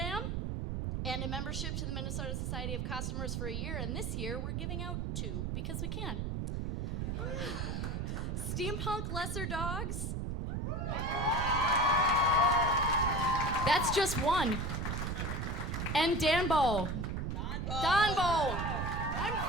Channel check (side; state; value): right; noise; rumble, 2 dB below the sound